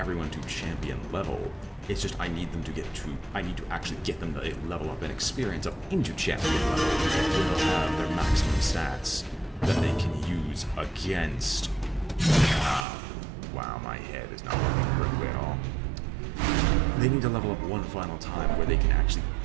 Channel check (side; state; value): left; drops out; at 12.9 s